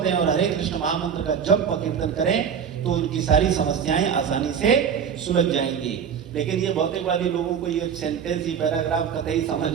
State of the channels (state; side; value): quieter; left; 7.5 dB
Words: और हरे कृष्ण महामंत्र का जप व कीर्तन करें तो उनकी सारी समस्याएं आसानी से सुलझ जाएंगी। लेकिन ये भौतिकवादी लोगों को ये सेंटेंस, ये पैराग्राफ कतई समझ